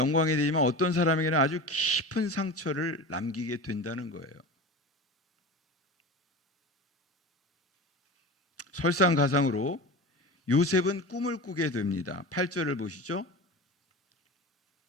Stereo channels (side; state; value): both; normal; correlation 0.30